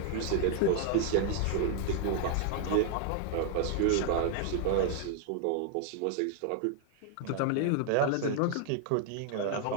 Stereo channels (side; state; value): both; different; correlation 0.00